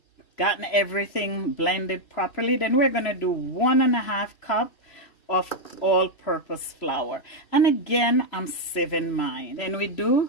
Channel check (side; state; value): right; late; 3.0 ms